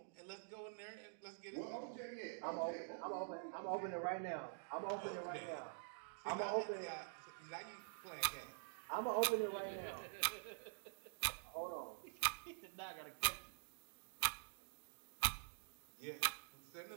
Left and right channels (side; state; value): left; silent; digital silence